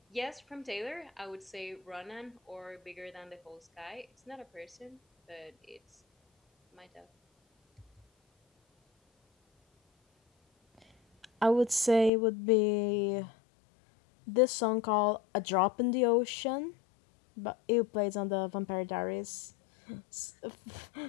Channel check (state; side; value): drops out; right; at 12.1 s